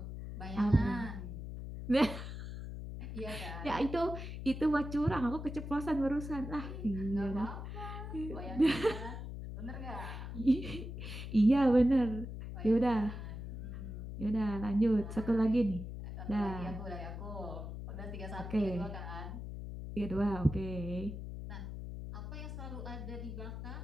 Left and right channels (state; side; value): noise; left; hum, 8 dB below the sound